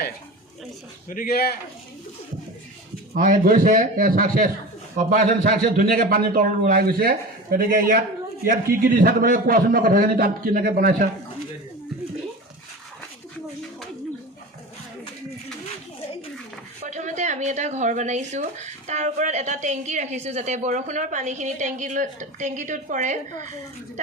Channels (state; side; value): normal; both; correlation 0.31